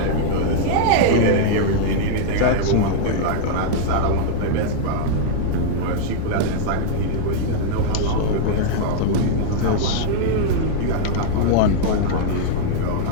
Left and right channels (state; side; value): different; both; correlation -0.01